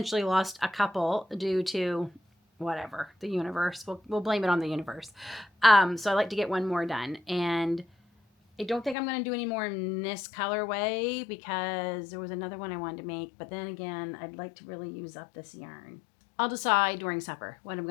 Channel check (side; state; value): right; drops out; at 9.0 s